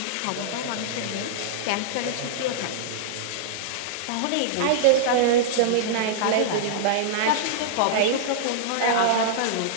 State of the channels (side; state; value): both; different; correlation -0.02